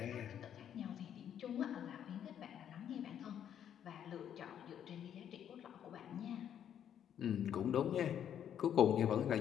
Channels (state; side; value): quieter; right; 9.5 dB